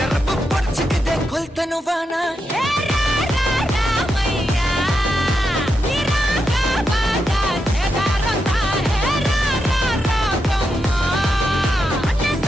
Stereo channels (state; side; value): normal; both; correlation 0.85